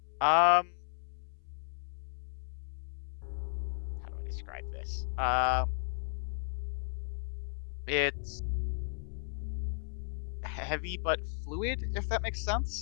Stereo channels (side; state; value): right; silent; 54 dB below the other